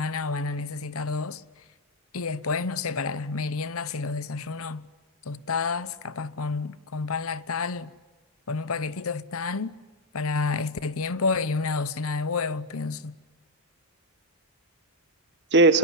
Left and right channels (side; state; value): both; normal; correlation 0.02